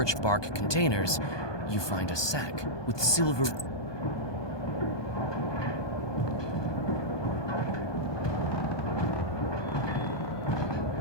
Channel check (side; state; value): right; late; 1.2 ms